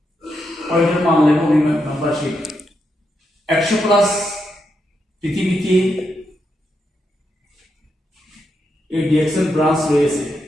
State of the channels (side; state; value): both; normal; correlation 0.83